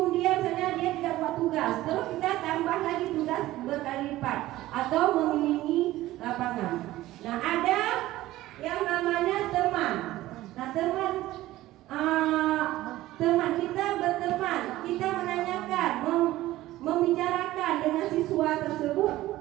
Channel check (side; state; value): left; quieter; 16.1 dB